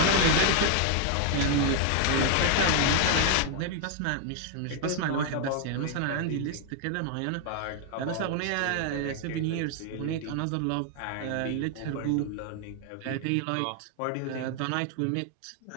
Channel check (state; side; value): different; both; correlation 0.00